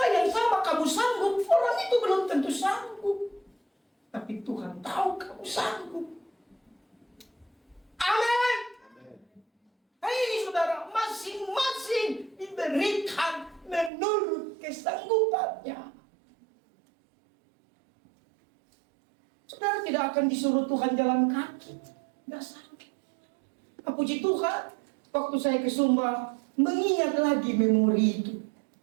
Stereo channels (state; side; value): drops out; left; at 13.9 s